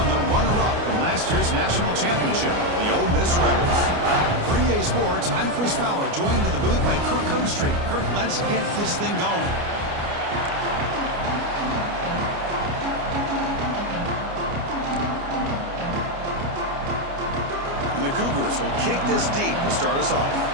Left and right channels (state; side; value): late; left; 29 ms